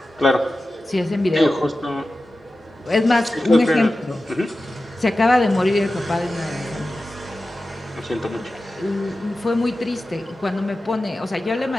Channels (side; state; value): both; normal; correlation 0.94